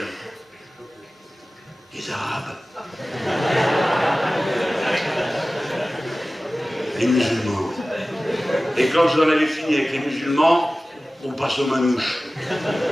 Les Arabes. Les musulmans. Et quand vous en avez fini avec les musulmans, on passe aux manouches.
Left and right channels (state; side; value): normal; both; correlation 0.97